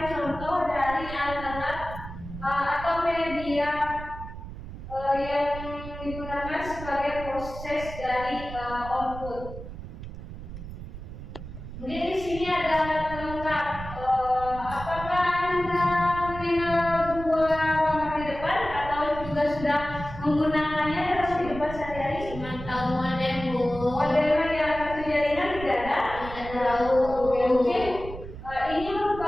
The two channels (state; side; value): noise; right; rumble, 11 dB below the sound